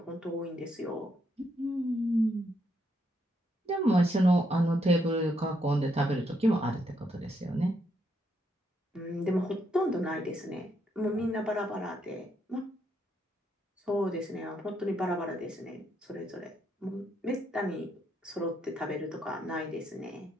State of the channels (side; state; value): both; normal; correlation 0.76